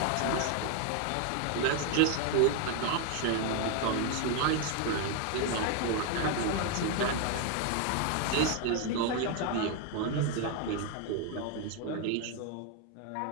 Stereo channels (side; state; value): both; different; correlation 0.01